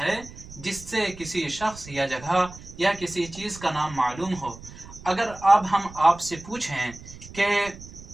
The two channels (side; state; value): right; noise; rumble, 16 dB below the sound